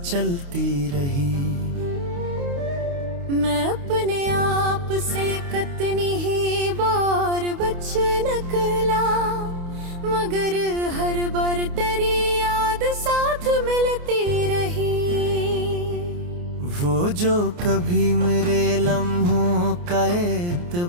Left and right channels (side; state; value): left; late; 29 ms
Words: चलती रही। मैं अपने आप से कितनी ही बार बच निकला, मगर हर बार तेरी याद साथ मिलती रही। वो जो कभी मेरे लम्हों का